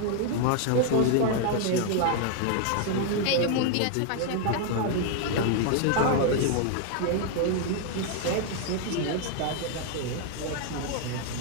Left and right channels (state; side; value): different; both; correlation 0.00